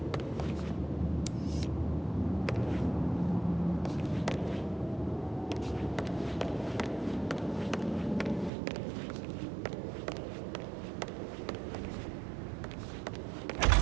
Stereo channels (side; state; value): left; drops out; at 8.5 s